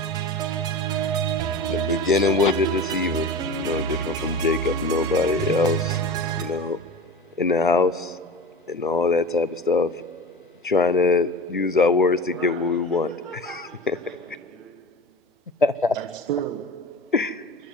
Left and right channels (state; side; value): normal; both; correlation 0.32